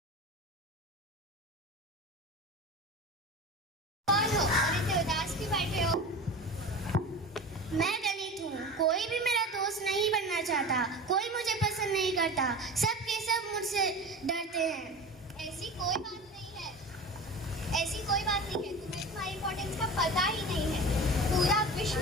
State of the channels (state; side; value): normal; both; correlation 0.33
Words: कौन हो और इतने उदास क्यों बैठे हो? मैं दलित हूँ, कोई भी मेरा दोस्त नहीं बनना चाहता, कोई मुझे पसंद नहीं करता, सब के सब मुझसे डरते हैं। ऐसी कोई बात नहीं है, ऐसी कोई बात नहीं है, तुम्हें तुम्हारी इम्पोर्टेंस का पता ही नहीं है। पूरा विश्व